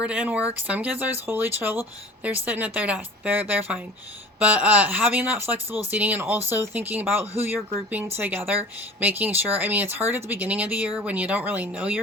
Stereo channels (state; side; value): normal; both; correlation 0.42